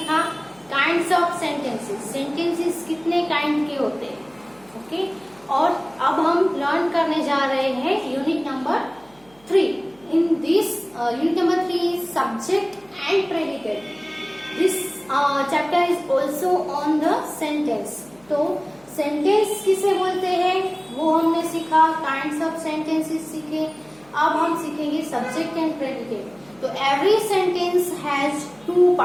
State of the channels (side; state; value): right; noise; hum, 30 dB below the sound